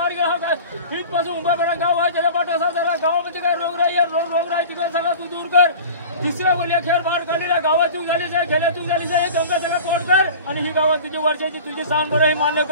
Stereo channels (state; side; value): inverted; both; correlation -0.38